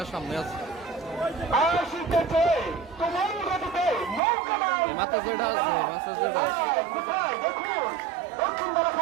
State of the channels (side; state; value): left; drops out; at 4.2 s